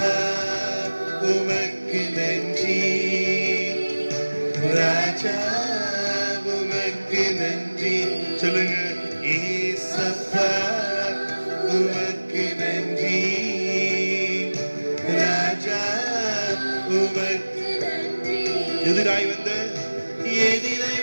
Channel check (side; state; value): both; inverted; correlation -1.00